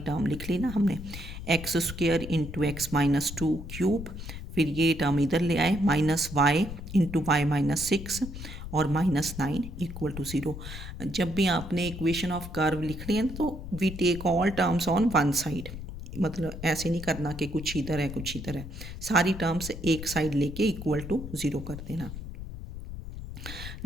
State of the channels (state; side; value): noise; left; rumble, 10 dB below the sound